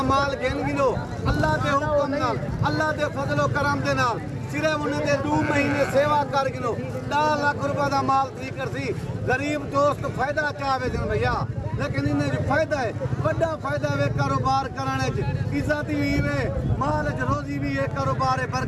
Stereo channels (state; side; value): identical; both; correlation 1.00